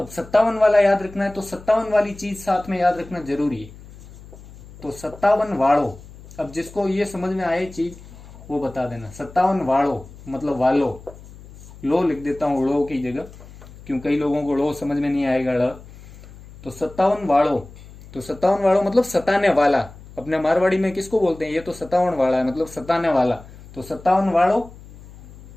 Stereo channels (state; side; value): noise; left; hum, 19 dB below the sound